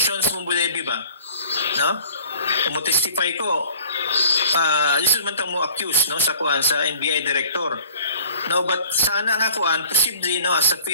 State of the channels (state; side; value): inverted; both; correlation -0.49